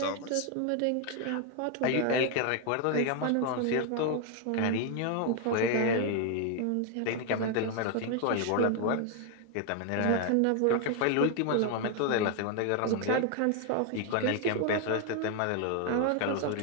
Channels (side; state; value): both; different; correlation 0.01